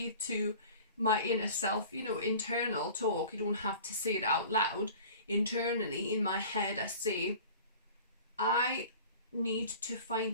to my inner self, internal talk, you don't have to say it out loud. Internally in my head, I say, I need to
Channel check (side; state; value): both; inverted; correlation -0.43